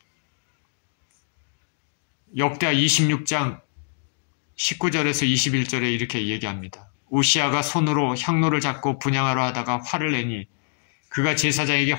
역대하 26장 19절에서 21절에 이렇게 얘기합니다. 우시아가 손으로 향로를 잡고 분향하려 하다가 화를 내니 그가 제사장에게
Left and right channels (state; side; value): silent; right; digital silence